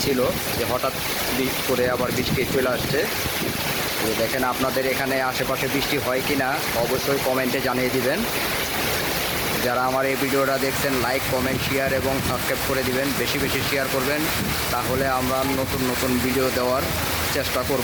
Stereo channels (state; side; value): identical; both; correlation 1.00